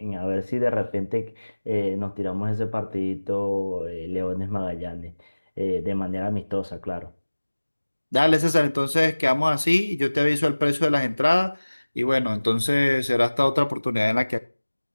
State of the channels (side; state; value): both; inverted; correlation -1.00